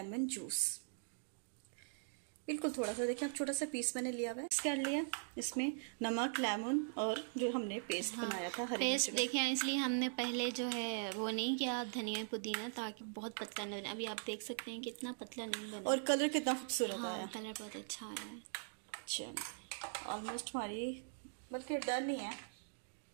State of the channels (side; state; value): left; silent; digital silence